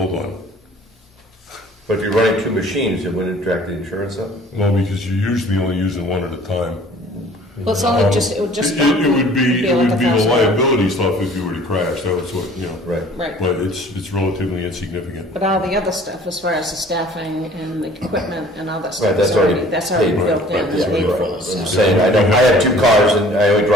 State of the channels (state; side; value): normal; both; correlation 0.51